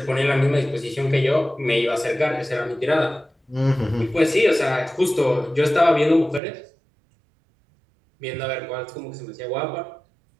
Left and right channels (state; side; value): drops out; left; at 6.4 s